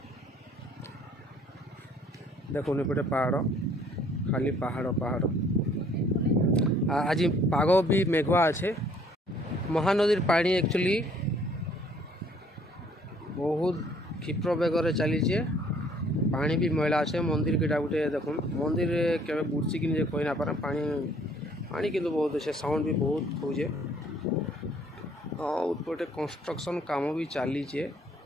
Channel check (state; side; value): normal; both; correlation 0.60